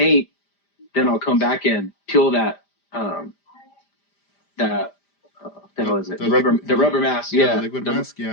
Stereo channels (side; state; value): right; late; 5.0 ms